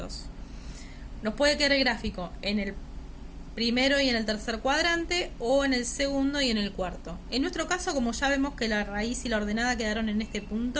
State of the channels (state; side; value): identical; both; correlation 1.00